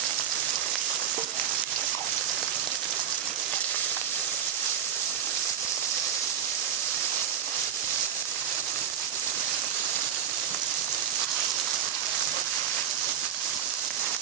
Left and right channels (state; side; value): quieter; left; 8.7 dB